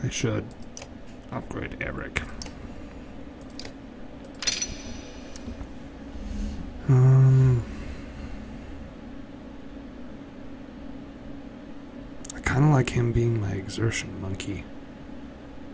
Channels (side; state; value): both; identical; correlation 1.00